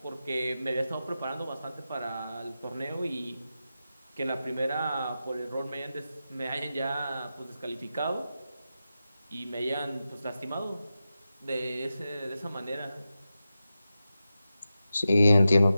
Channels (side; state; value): both; inverted; correlation -0.91